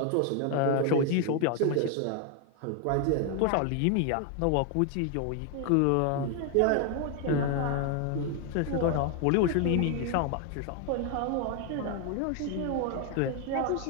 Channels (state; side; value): different; both; correlation 0.01